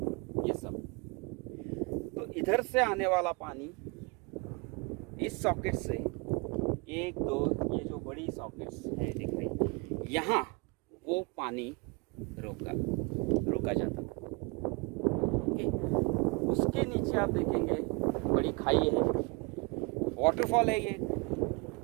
ये सब, तो इधर से आने वाला पानी इस सॉकेट से 1 2 ये जो बड़ी सॉकेट्स है दिख रही, यहाँ वो पानी रोका जाता था। ओके, उसके नीचे आप देखेंगे बड़ी खाई है, वाटरफॉल है ये,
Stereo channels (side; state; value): left; quieter; 29.2 dB